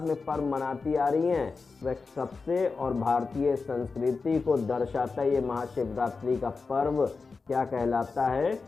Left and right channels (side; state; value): right; quieter; 4.4 dB